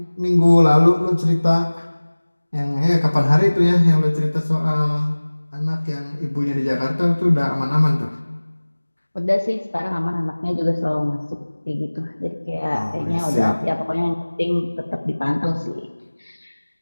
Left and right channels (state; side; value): inverted; both; correlation -1.00